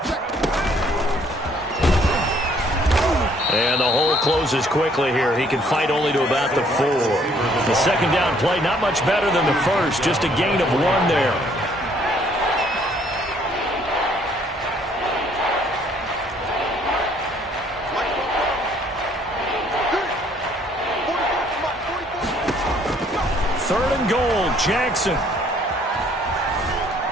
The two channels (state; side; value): normal; both; correlation 0.62